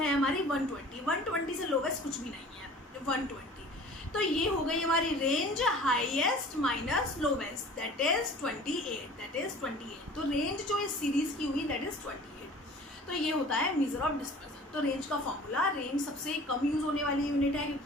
हमारी 120, 120 से लोवेस्ट कुछ भी नहीं है, 120। तो ये हो गई हमारी range highest minus lowest, that is 28। तो रेंज जो इस सीरीज की हुई दैट इज 28। तो ये होता है मेजर ऑफ डिस्पर्सन। तो रेंज का फॉर्मूला, रेंज सबसे कम यूज होने वाली यूनिट है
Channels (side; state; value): both; normal; correlation 0.45